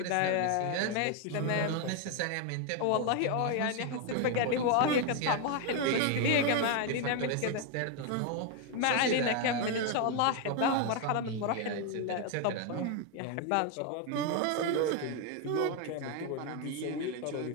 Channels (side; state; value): both; different; correlation 0.01